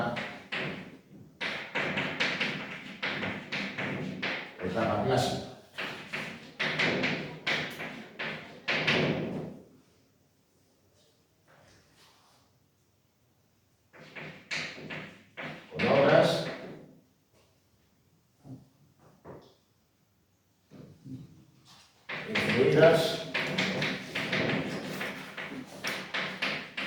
etapa clásica. Con obras influidas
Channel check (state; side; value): identical; both; correlation 1.00